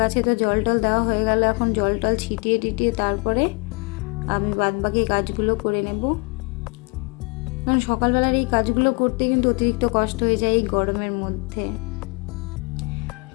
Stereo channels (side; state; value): right; quieter; 30.4 dB